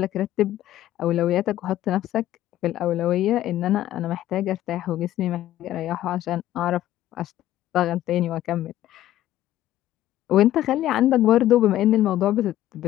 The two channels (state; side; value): quieter; right; 13.5 dB